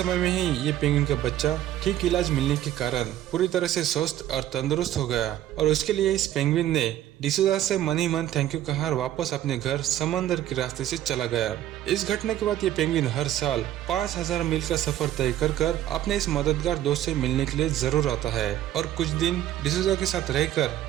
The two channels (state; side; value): quieter; left; 12.6 dB